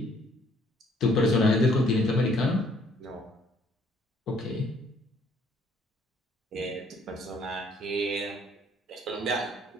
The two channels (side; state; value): both; normal; correlation 0.63